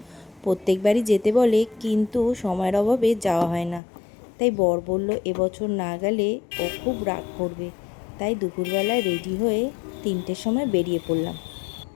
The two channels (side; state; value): right; drops out; at 3.8 s